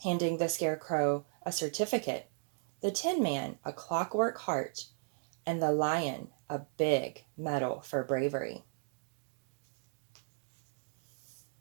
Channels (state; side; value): silent; left; digital silence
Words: handing the Scarecrow a certificate, the Tin Man a clockwork heart, and the Lion a big medal for bravery.